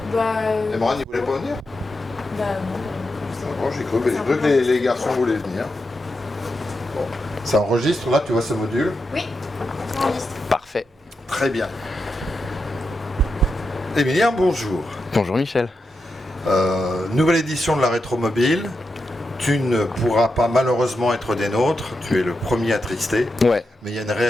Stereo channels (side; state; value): both; normal; correlation 0.87